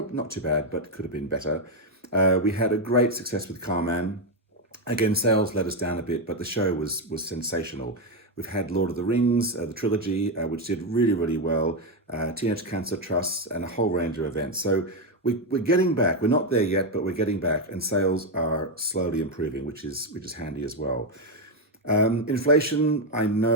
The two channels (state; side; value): normal; both; correlation 0.06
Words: not too bad, but could have been better. We had a great success with Carman. Again, sales let us down a bit, but the show was sensational. We've had Lord of the Rings, the trilogy, which did really, really well, Teenage Cancer Trusts, and a whole range of events. So we're getting back. We're not there yet, but we're getting back, and sales are slowly improving, which is handy as well. Inflation, I